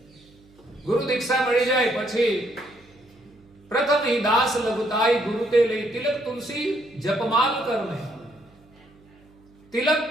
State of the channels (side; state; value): right; noise; hum, 29 dB below the sound